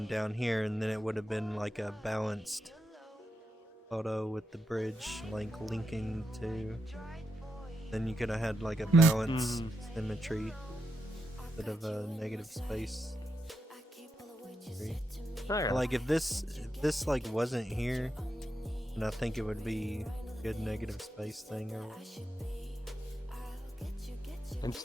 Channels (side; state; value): both; normal; correlation 0.85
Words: down here, and then it would have been like a balanced photo with the bridge like linking to. Then you could have had like a balanced symmetry instead of a negative space. Okay. Like if this like wasn't here, then I think it would be a good negative space thing. Or